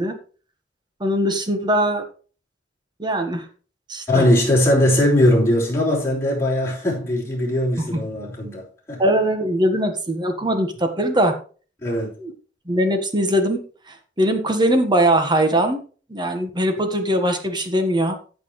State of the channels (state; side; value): normal; both; correlation 0.52